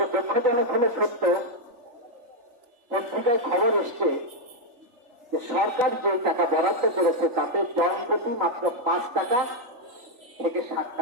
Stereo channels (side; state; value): left; late; 3.4 ms